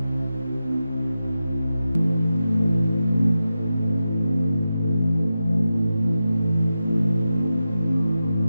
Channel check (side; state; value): both; inverted; correlation -0.91